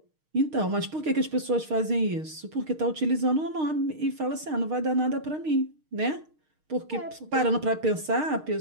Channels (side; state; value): left; late; 6.5 ms